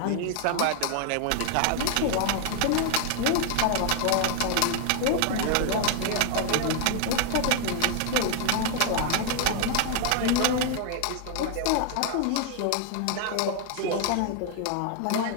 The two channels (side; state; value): both; different; correlation 0.00